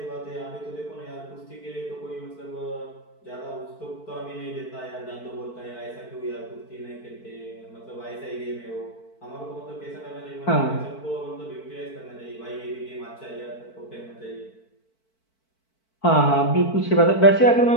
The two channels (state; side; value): late; right; 4.5 ms